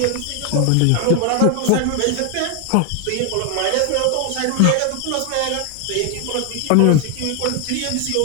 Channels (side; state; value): both; different; correlation 0.01